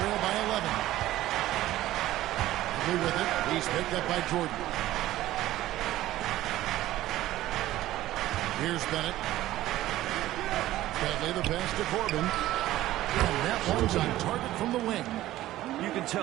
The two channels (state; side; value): quieter; left; 15.1 dB